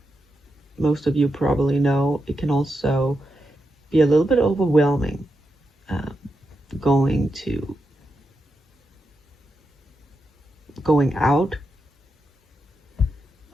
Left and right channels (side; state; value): both; normal; correlation 0.86